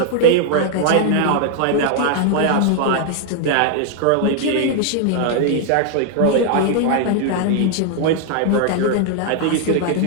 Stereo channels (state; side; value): different; both; correlation 0.00